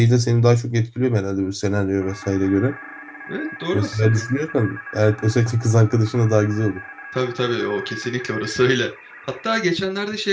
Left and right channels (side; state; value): both; identical; correlation 1.00